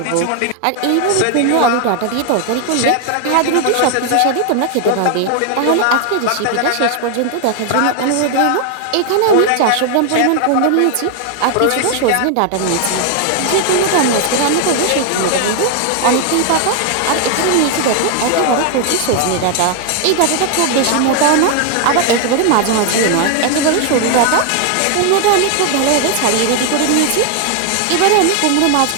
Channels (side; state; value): both; different; correlation 0.00